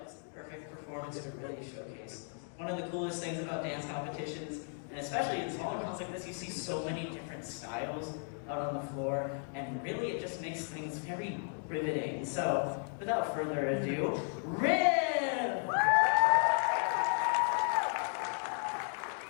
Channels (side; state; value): right; silent; 54 dB below the other